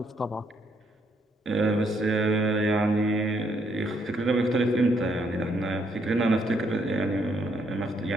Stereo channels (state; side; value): normal; both; correlation 0.72